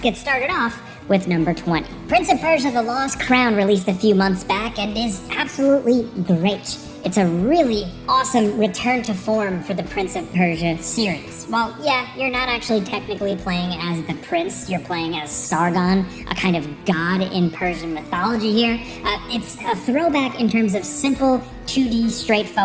started off with number 20. Prince of Persia: The Lost Crown released a few months back and is absolutely great. It's a really awesome return to form for the Prince of Persia series. Well, yeah, you're not actually technically playing as the prince, you're playing as Sargon, a kind of god in Persian mythology here. It's a throwback in terms of simple, 2D,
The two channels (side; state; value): both; identical; correlation 1.00